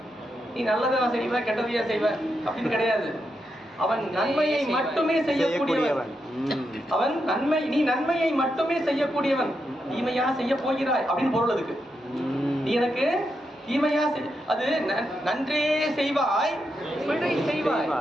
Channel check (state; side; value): normal; both; correlation 0.84